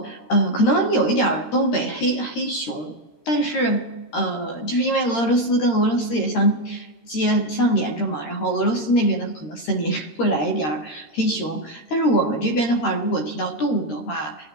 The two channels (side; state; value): right; late; 13 ms